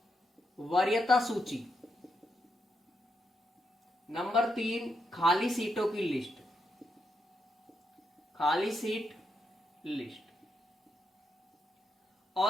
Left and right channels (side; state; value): both; normal; correlation 0.82